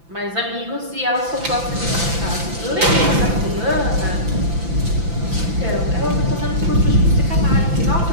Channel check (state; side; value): late; left; 5.9 ms